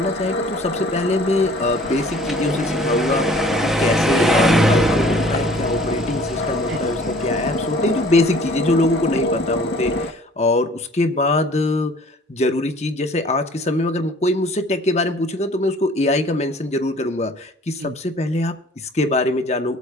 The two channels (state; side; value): normal; both; correlation 0.52